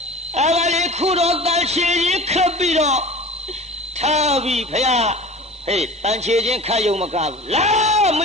အဲ့ဒါလေးခုတော့တန်ချေကြီးခပ်ပြီးတော့ထားပြီဗျာဟေးတန်ချေချင်းခတ်ယုံမကားဘူးလာမ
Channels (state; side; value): normal; both; correlation 0.39